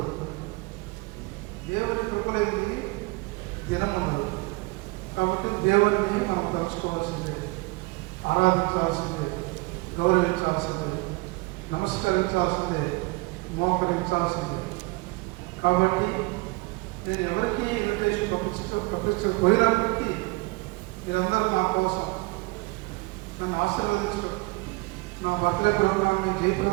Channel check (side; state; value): left; quieter; 25.1 dB